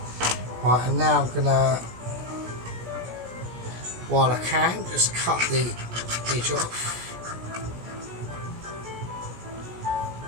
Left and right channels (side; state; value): left; late; 17 ms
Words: Right, and now I'm gonna, while I can, just cut the edge off.